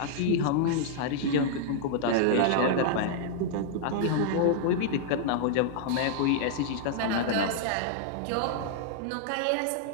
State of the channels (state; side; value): different; both; correlation -0.01